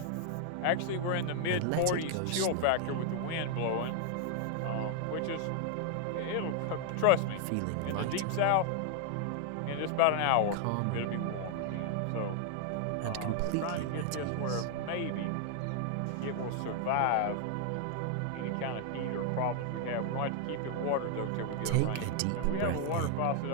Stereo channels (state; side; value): different; both; correlation 0.00